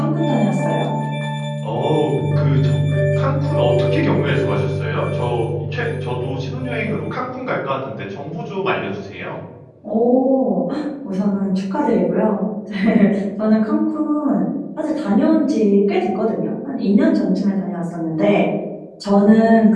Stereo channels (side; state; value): both; identical; correlation 1.00